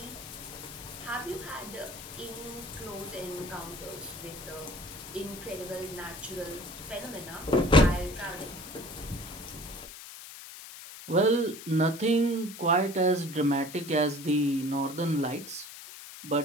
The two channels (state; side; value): noise; left; hiss, 13 dB below the sound